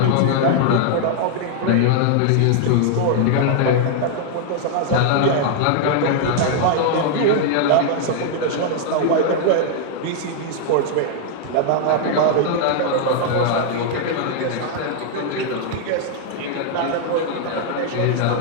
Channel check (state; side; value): different; both; correlation 0.00